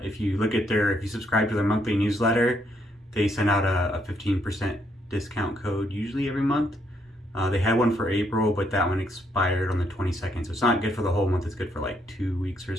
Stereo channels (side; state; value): both; normal; correlation 0.73